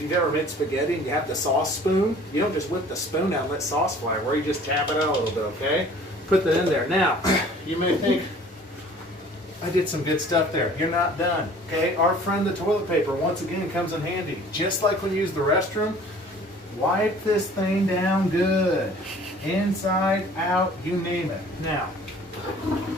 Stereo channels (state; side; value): normal; both; correlation 0.50